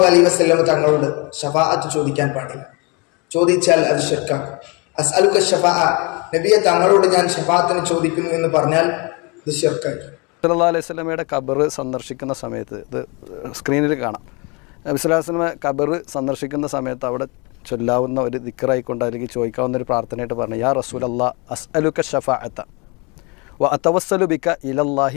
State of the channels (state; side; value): quieter; right; 29.6 dB